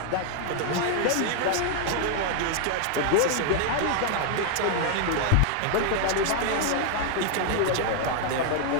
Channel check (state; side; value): different; both; correlation 0.00